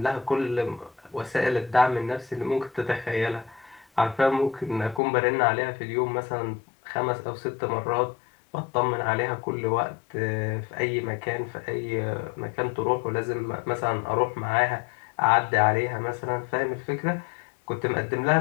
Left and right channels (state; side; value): drops out; right; at 5.0 s